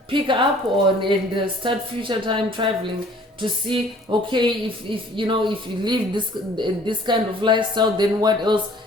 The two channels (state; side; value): normal; both; correlation 0.54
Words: pick up on and start future time traveling to see, okay, if you live this kind of lifestyle, then what else